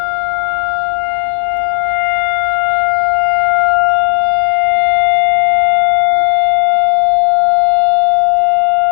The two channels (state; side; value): silent; right; digital silence